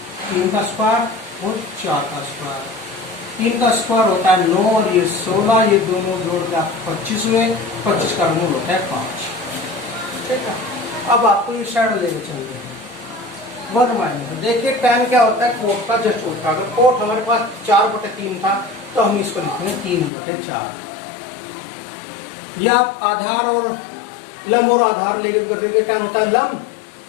3 का स्क्वायर और 4 का स्क्वायर। 3 का स्क्वायर होता है 9 और ये 16, ये दोनों जोड़ के आपको 25 हुए। 25 का मूल होता है 5। ठीक है, अब आपको ये साइड लेके चलते हैं 1 माइनस। देखिए tan क्या होता है, कोट का जस्ट उल्टा। अगर कोट हमारे पास 4/3 था तो हम इसको लिखेंगे 3/4। या आप आधार और लंब और आधार लेके करके tan होता है लंब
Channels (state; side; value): drops out; right; at 20.1 s